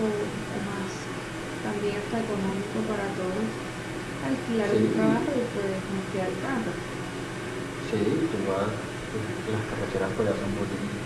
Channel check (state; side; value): identical; both; correlation 1.00